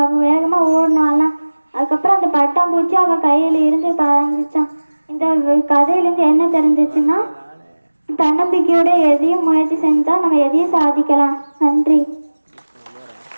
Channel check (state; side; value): inverted; both; correlation -1.00